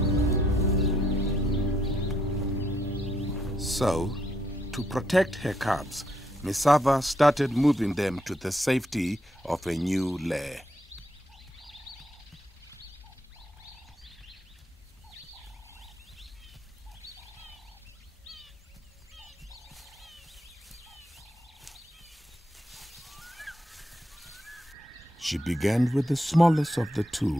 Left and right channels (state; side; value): normal; both; correlation 0.76